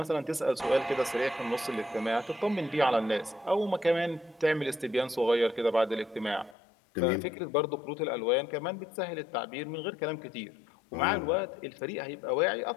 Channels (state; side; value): drops out; right; at 6.6 s